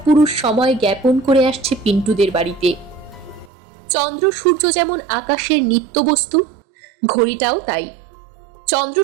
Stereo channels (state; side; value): drops out; left; at 3.5 s